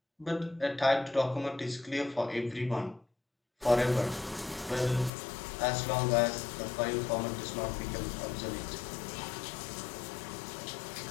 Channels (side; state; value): right; drops out; at 5.1 s